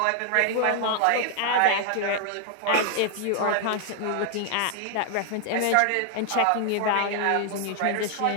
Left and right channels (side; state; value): both; different; correlation 0.00